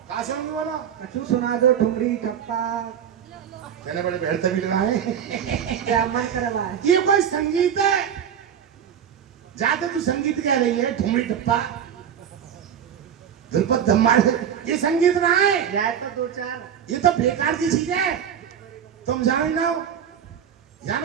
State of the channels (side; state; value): left; quieter; 8.7 dB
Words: कहाँ से होंगे बोलो कछु सुना दो ठुमरी ठप्पा कहने बड़े बेहतर भी लगा है क्या मन करवाए। ये कोई संगीत है जाते तू संगीत कह रही है ठुमरी टप्पा ध्रुपद धम्मार ये संगीत ना है जाए तो दो चार। ये तो बेकार की चीज है तुम जाने ना हो यहाँ